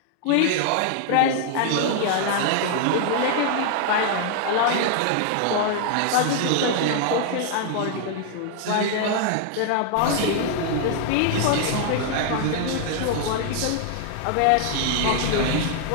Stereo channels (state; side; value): different; both; correlation 0.00